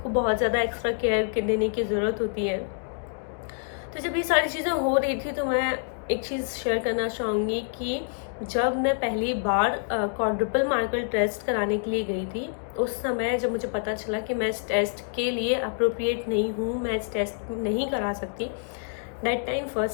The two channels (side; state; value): right; silent; digital silence